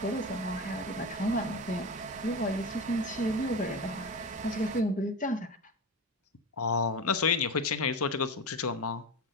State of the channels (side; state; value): both; normal; correlation 0.23